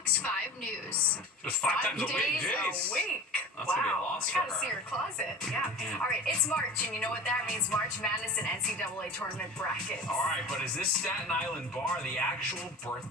5 News. Just 5 times a week, days jeez. a week. That's Wow. gonna be a loss I for gotta her. see her closet. Yeah. All right, it's March, and you know what that means. March Madness and NCAA tournament brackets. All right, but is this Staten Island bar the actual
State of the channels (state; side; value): normal; both; correlation 0.35